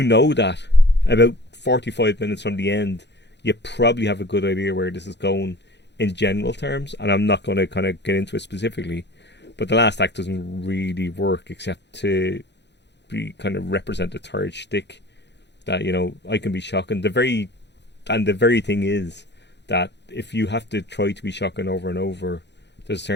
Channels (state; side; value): late; right; 0.50 ms